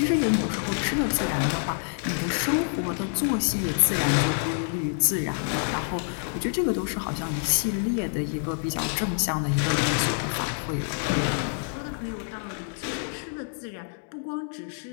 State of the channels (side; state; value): right; silent; 60 dB below the other